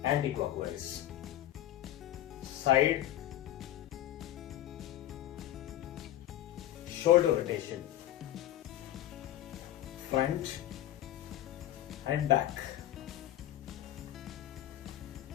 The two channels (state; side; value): quieter; right; 13.2 dB